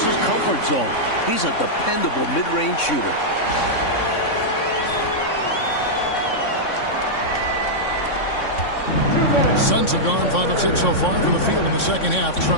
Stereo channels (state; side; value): late; right; 3.6 ms